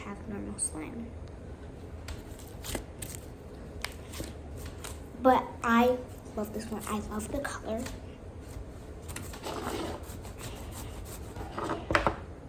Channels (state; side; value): identical; both; correlation 1.00